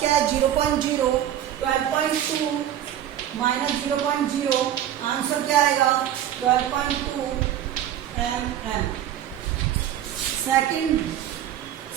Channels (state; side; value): quieter; left; 11.1 dB